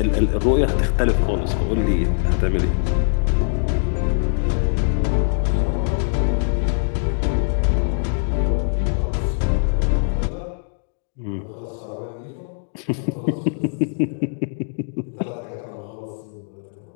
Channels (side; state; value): right; silent; digital silence